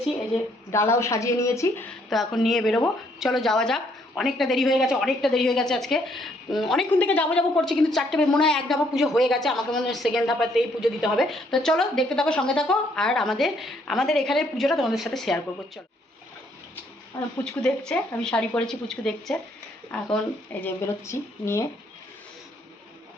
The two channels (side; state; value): both; normal; correlation 0.68